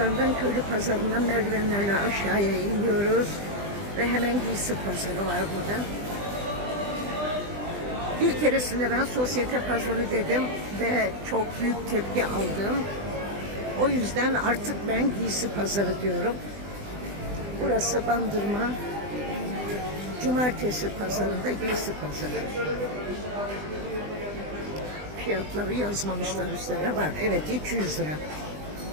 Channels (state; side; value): late; left; 20 ms